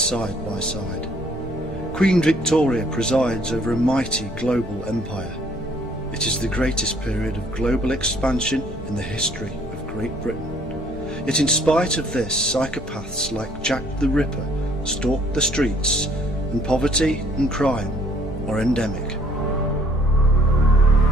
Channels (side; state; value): both; normal; correlation 0.60